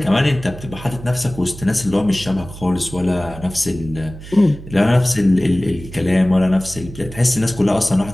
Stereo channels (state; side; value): noise; right; hum, 14 dB below the sound